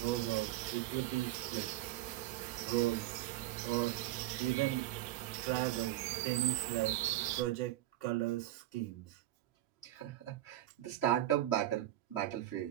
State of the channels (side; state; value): left; quieter; 15.0 dB